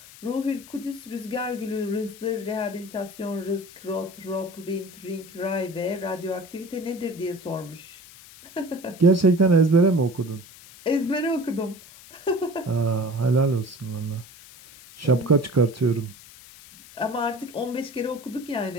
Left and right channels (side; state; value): left; noise; hiss, 20 dB below the sound